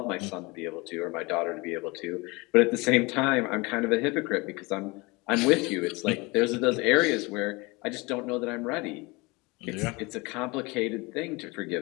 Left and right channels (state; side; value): quieter; right; 25.4 dB